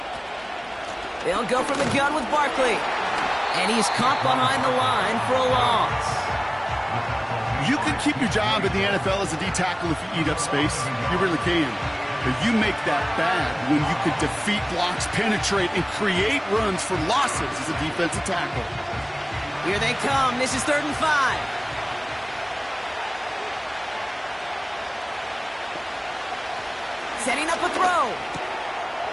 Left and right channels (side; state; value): both; identical; correlation 1.00